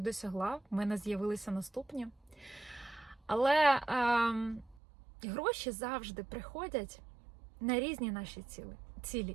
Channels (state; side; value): drops out; left; at 4.8 s